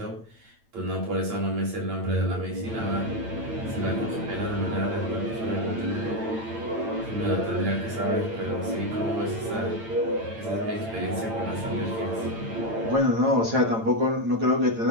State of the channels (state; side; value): late; left; 8.9 ms